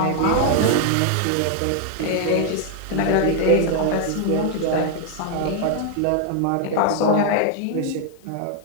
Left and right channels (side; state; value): both; different; correlation 0.00